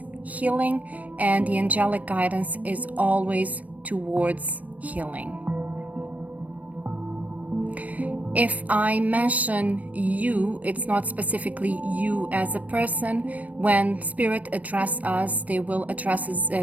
healing, and the angelic guidance is always towards healing. If I mention you, it's not specifically you as a person. When Spirit address us, they will address us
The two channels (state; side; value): late; left; 0.070 ms